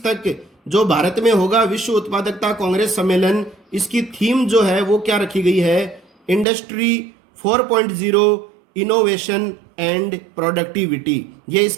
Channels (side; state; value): left; drops out; at 6.5 s